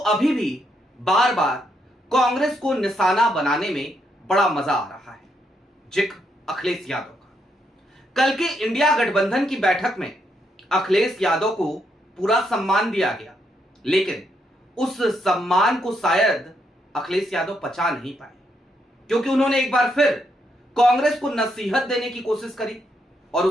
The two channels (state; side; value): normal; both; correlation 0.77